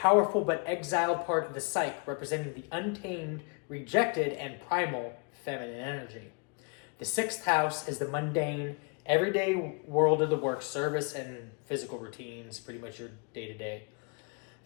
but exiled part of the psyche, representing the untamed, rejected, and primal feminine energy. The sixth house is the mundane, everyday world of the work, service, and physical routines, pretty much your day-to-day.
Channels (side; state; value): right; quieter; 33.6 dB